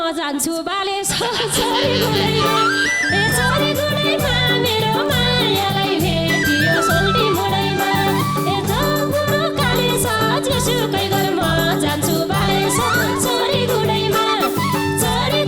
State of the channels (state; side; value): identical; both; correlation 1.00